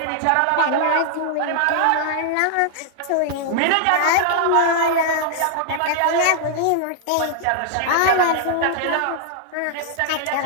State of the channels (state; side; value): different; both; correlation -0.01